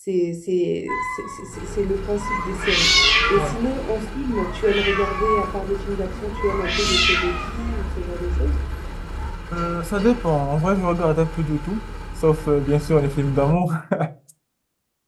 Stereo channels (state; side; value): identical; both; correlation 1.00